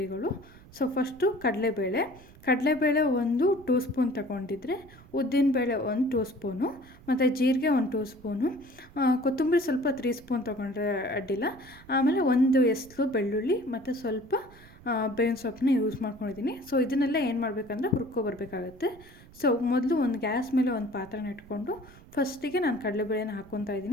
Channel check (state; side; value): noise; right; rumble, 22 dB below the sound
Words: ಫಸ್ಟು ಕಡಲೆಬೇಳೆ 1 ಸ್ಪೂನ್ ತಗೊಂಡಿದ್ರೆ, ಉದ್ದಿನಬೇಳೆ 1 ಸ್ಪೂನು, ಮತ್ತು ಜೀರಿಗೆ 1 ಸ್ಪೂನು, ಕೊತ್ತಂಬರಿ ಸ್ವಲ್ಪ 3 ಸ್ಪೂನ್ ತೊಗೊಂಡ್ರೆ ಅಡ್ಡಿಲ್ಲ. ಆಮೇಲೆ 1 ಎಸ್ಲು ಬೆಳ್ಳುಳ್ಳಿ ಮತ್ತು ಸ್ವಲ್ಪ ಬೇವಿನ ಸೊಪ್ಪನ್ನ ಯೂಸ್ ಮಾಡ್ಕೊಂಡಿದ್ದೀನಿ. ಇದನ್ನೆಲ್ಲ ಏನು ಮಾಡಬೇಕಂದ್ರೆ ಹುರ್ಕೊಬರ್ಬೇಕಾಗತ್ತೆ. ಮೊದಲು ಒಂದು ಗ್ಯಾಸ್ ಮೇಲೆ ಒಂದು ಪಾತ್ರೆನ ಇಟ್ಕೊಂಡು ಫಸ್ಟಿಗೆ ನಾನು ಕಡಲೆಬೇಳೆನ ಹಾಕ್ಕೊತಾ